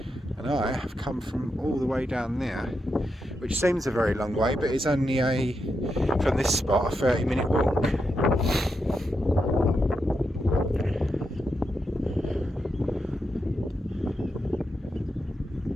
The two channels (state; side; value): normal; both; correlation 0.85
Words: I have come from all the way down there, which seems a very long way, but it's only from this spot, a 30-minute walk.